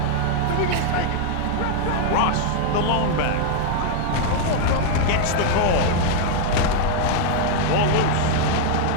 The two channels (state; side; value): different; both; correlation -0.01